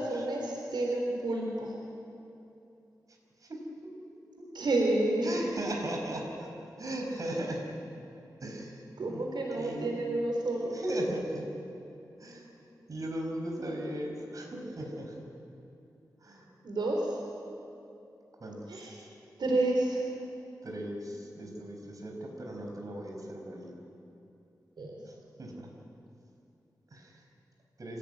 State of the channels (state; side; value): normal; both; correlation 0.84